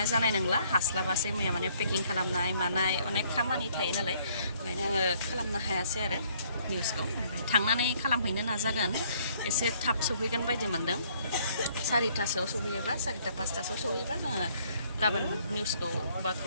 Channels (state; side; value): inverted; both; correlation -0.64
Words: जानाय नंला हास्लाबासै मैया माने पेकिं खालामनाय मानाय अनेक खामानि थायो नालाय ओंखायनो आङो खालामनो हायासै आरो निउसखौ ओमफ्राय थांनानै खालामहैनो नाजागोन एसे थाब सफैगोन बायदि मोनदों 4टासोआव सफैयोबा 4टा 5टासोआव सफैयोबा जोङो गाबोन निउसखौ बा